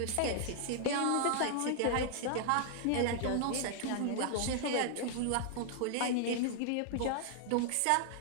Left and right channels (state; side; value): different; both; correlation -0.01